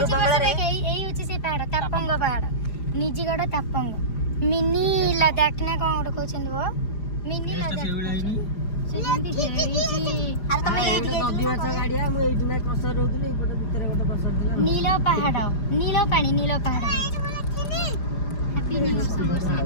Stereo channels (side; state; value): right; late; 4.9 ms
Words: ବଙ୍ଗଳାରେ ଏଇ ହଉଛି ସେଇ ପାହାଡ଼ ତାପଙ୍ଗ ପାହାଡ଼ ନିଜଗଡ଼ ତାପଙ୍ଗ ମିନି ଲଦାଖ ନା କଣ ଗୋଟେ କହୁଛନ୍ତି ବୋ ମିନି ଲଦାଖ ସେଇଭଳିଆ ହେଇନି ସେ ଯେମିତି ହେଇଛି। ଆରେ ତମେ ଏଇଠି ନଦୀ ମାଛ ଗାଡ଼ିଆ ମୁଁ ଏଇଠି ନା କ୍ରସର ରହୁଥିଲି ଏଇପଟେ ଭିତରେ ଗୋଟେ କ୍ରସର ଥିଲା ନୀଳ ପାହାଡ଼ ନୀଳ ପାଣି ନୀଳ ପାହାଡ଼